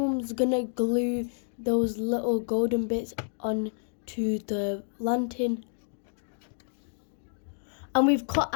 gonna glue those little golden bits onto the lantern. And we've cut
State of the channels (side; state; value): right; silent; digital silence